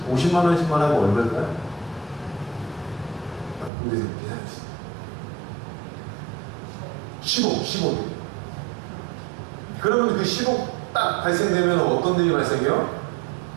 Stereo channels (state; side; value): drops out; left; at 3.7 s